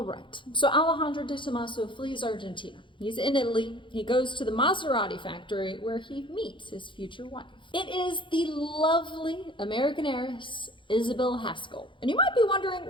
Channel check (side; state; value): right; late; 0.24 ms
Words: right, so Alejandro De Tomaso flees Argentina. He's in Italy. He goes to the Maserati factory where he meets his future wife. It is the lovely American heiress, Isabell Haskell. And you might be